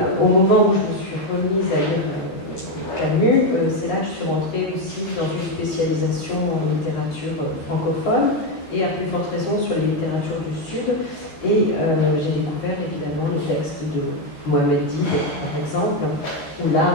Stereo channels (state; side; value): late; right; 13 ms